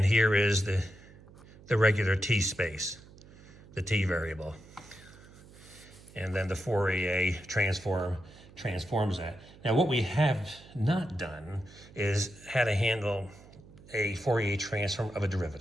here is the regular t space, the t variable, and then the Fourier transform transforms that. Now, what we have not done is how to handle a Fourier transform of a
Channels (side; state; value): right; noise; hum, 22 dB below the sound